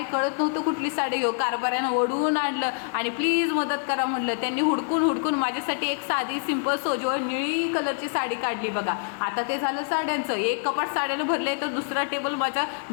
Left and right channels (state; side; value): silent; right; 61 dB below the other